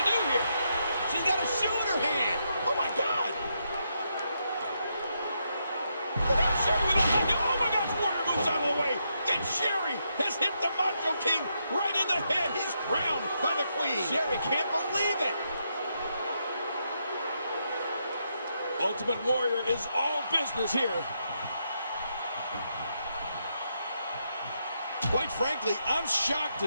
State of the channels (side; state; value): both; inverted; correlation -0.80